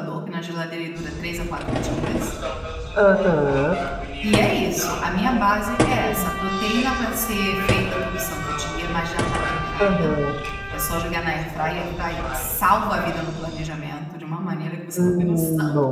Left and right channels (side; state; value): both; identical; correlation 1.00